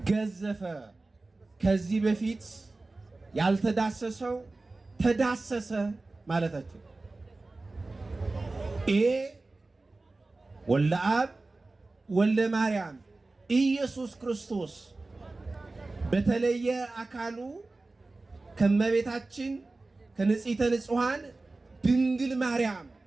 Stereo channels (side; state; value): left; quieter; 3.3 dB